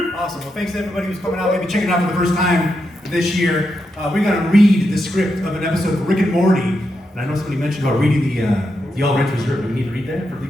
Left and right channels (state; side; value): normal; both; correlation 0.84